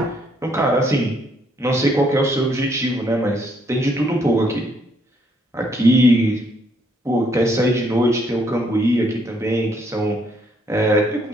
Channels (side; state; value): both; normal; correlation 0.69